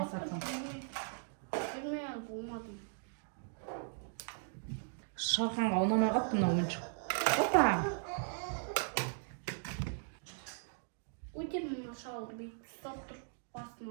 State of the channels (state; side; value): silent; left; digital silence